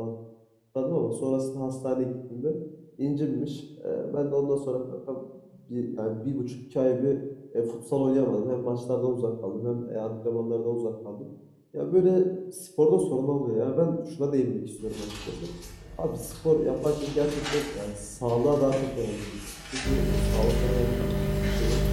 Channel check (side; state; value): both; identical; correlation 1.00